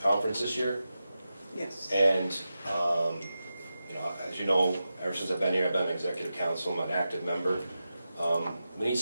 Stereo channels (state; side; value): inverted; both; correlation -0.91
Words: conference this year, Yes. and, You know, as you know, ever since I've been here, I've been executive council, I'm an active member. We need